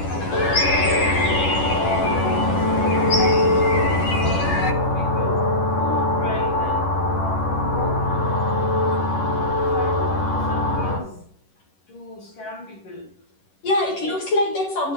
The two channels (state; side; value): late; right; 10 ms